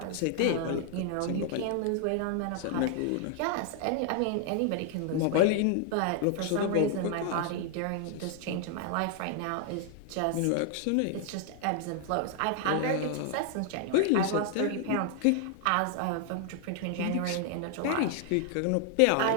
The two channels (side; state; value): both; different; correlation 0.00